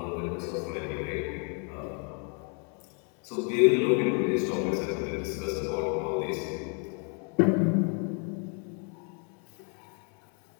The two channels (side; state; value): right; quieter; 39.5 dB